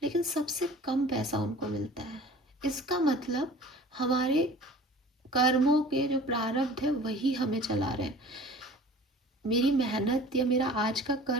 लेकिन सबसे कम पैसा उनको मिलता है। इसका मतलब हमारे कर्मों के जो प्रारब्ध है वही हमें चला रहे हैं। मेरी मेहनत या मेरा आज का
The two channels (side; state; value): both; normal; correlation 0.44